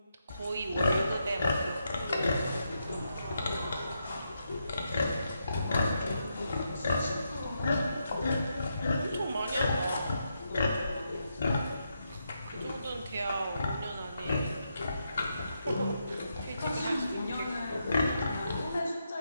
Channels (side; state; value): both; inverted; correlation -0.82